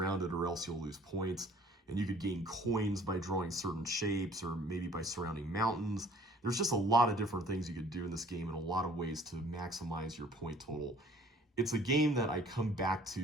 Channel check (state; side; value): normal; both; correlation 0.54